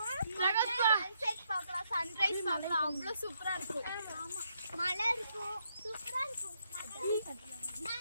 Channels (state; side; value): inverted; both; correlation -0.76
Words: சன்செட் பார்க்கலாம், சன்ரைஸ் பார்க்கலாம். அவ்வளவு சூப்பரா இருக்கும். ஆமா, மலை இருக்கும், சூப்பரா இருக்கும்.